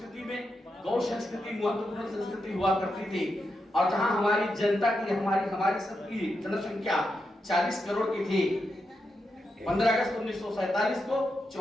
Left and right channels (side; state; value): both; normal; correlation 0.86